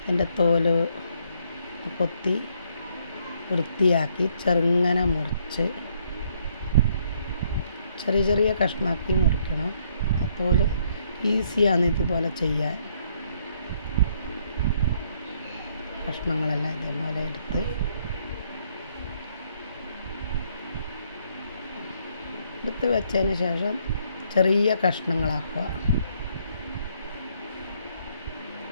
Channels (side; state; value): both; inverted; correlation -0.70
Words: അതിൻ്റെ തോല് കൊത്തി വൃത്തിയാക്കി ചെറുങ്ങനെ മുറിച്ച് ചെറിയ ചെറിയ കഷ്ണമാക്കി മുറിക്കണം. അപ്പോൾ ഈസിയാണ് ഇതുപോലെ ചെയ്യാൻ. കഷ്ണങ്ങളെല്ലാം ഇതേപോലെ എടുത്ത് വെച്ചതിന് ശേഷം ചെറിയ കഷ്ണങ്ങളാക്കുക.